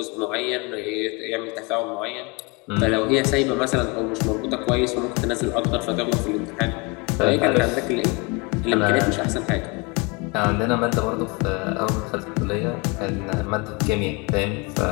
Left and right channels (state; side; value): quieter; right; 27.8 dB